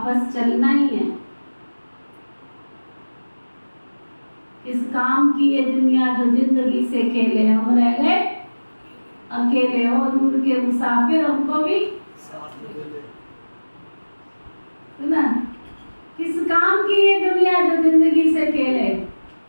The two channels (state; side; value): inverted; both; correlation -1.00